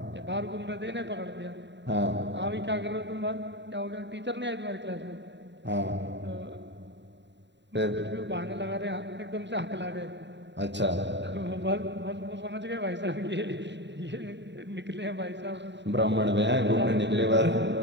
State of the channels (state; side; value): late; left; 0.52 ms